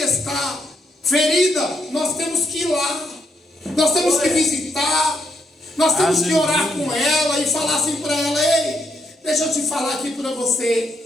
ferida, nós temos que ir lá, nós temos que visitar, nós temos que orar com ela e falar assim para ela: ei, deixa eu te falar aqui para você.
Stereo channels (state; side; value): normal; both; correlation 0.78